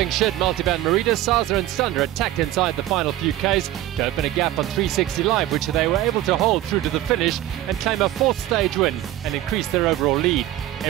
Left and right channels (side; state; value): left; quieter; 14.3 dB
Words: shed Multivan Merida, Saza and Sunder attacked inside the final few Ks to open a gap on 360 Live, which they were able to hold through to the finish and claim a fourth stage win and increase their overall lead.